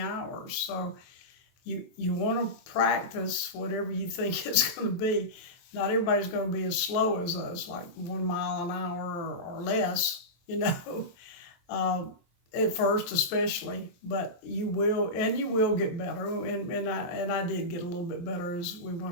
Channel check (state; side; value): late; right; 23 ms